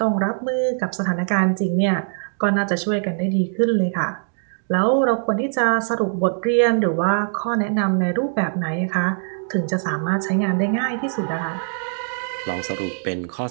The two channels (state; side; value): silent; left; digital silence